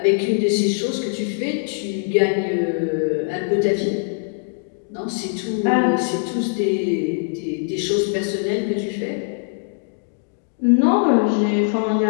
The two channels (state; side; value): silent; right; digital silence